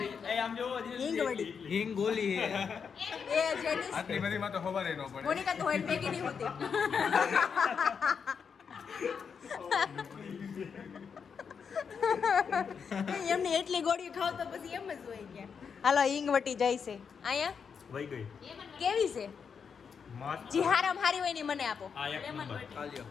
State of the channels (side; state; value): right; quieter; 6.4 dB